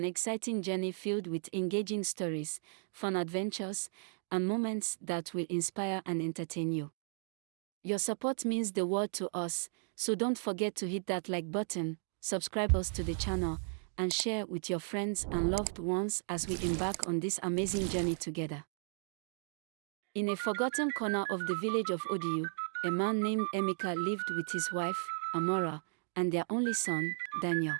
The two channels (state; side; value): silent; left; digital silence